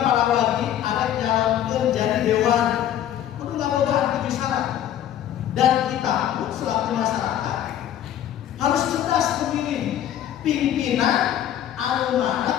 para warga ada nyalonkan jadi dewan kudu ngabogaan 7 syarat. Dan kita pun selaku masyarakat harus cerdas memilih pimpinan anu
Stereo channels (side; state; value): right; quieter; 11.0 dB